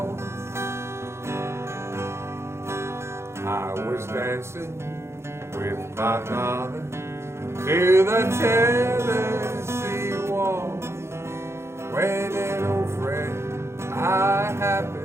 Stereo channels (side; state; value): left; late; 0.13 ms